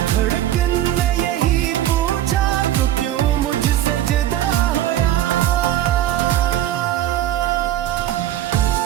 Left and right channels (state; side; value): quieter; left; 12.6 dB